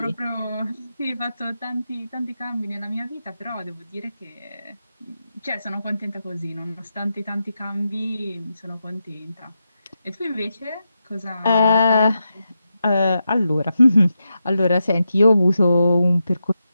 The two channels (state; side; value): inverted; both; correlation -0.87